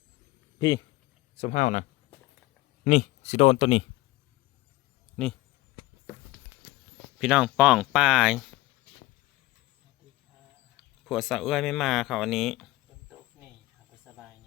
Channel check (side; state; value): right; quieter; 19.0 dB